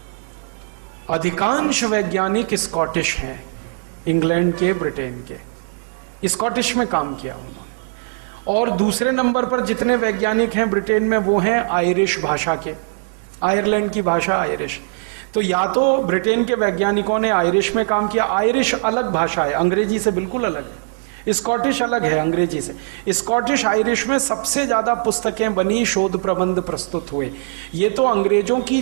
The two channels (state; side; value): silent; left; 64 dB below the other